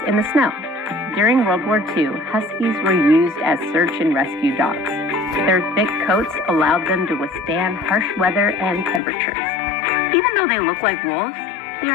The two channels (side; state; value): right; drops out; at 9.0 s